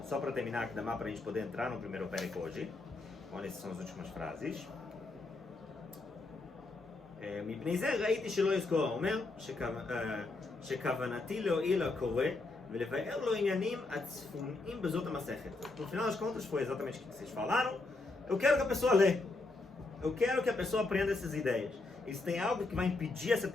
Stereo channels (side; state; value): right; quieter; 3.3 dB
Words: só para terminar aqui, dá para a gente poder entrar no primeiro Perek hoje. Olha, essas são as últimas frases. מפני זה ראיתי שלא יזכור, אומר שכוונתי להועיל לקורא ולבאר לו עניינים הצפוניים בזאת המסכת. No final das contas foi exatamente o que vocês falaram. Eu quero que a pessoa lê. Eu quero que a pessoa aprenda essas ideias. E se tem algo que vai impedir essa